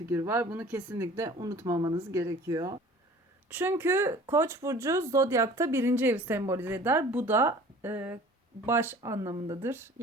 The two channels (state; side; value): normal; both; correlation 0.47